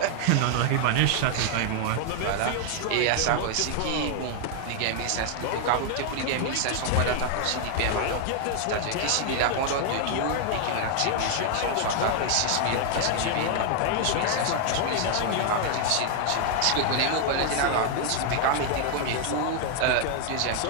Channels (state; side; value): different; both; correlation 0.00